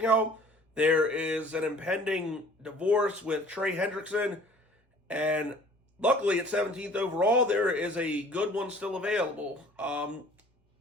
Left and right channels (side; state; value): both; normal; correlation 0.51